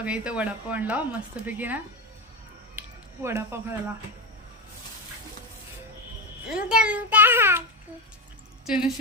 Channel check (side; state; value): both; normal; correlation 0.17